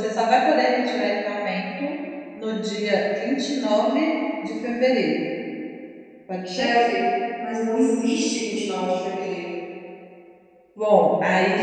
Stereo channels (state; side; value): identical; both; correlation 1.00